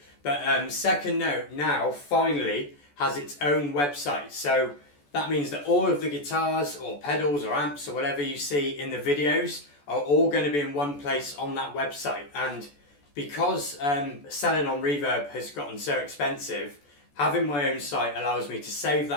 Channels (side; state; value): right; late; 14 ms